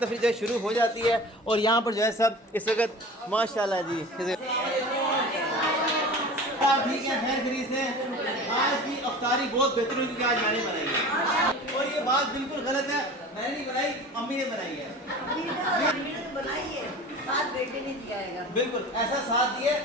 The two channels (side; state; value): both; normal; correlation 0.37